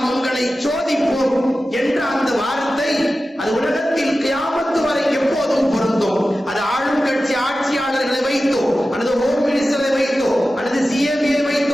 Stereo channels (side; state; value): both; normal; correlation 0.94